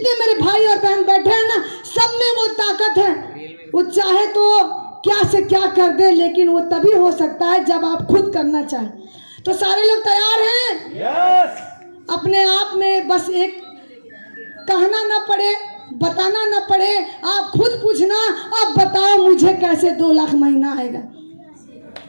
मेरे भाई और बहन बैठे हैं ना, सब में वो ताकत है। वो चाहे तो क्या से क्या कर दे, लेकिन वो तभी हो सकता है जब आप खुद करना चाहें। तो सारे लोग तैयार हैं? yes! अपने आप में बस एक कहना ना पड़े, बताना ना पड़े, आप खुद पूछना, अब बताओ मुझे कैसे 2 लाख महीना आएगा।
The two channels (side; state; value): both; inverted; correlation -1.00